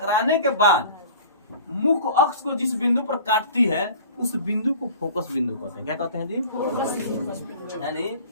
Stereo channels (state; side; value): inverted; both; correlation -0.43